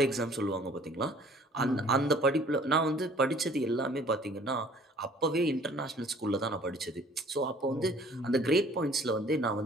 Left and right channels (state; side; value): normal; both; correlation 0.54